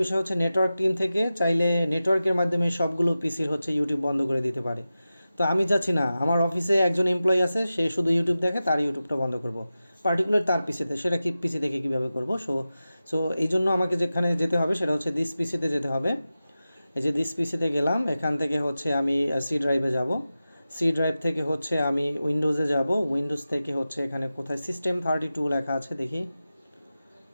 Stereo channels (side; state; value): both; inverted; correlation -0.94